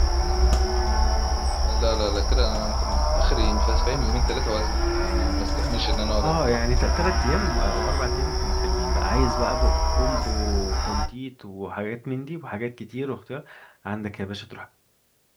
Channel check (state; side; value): identical; both; correlation 1.00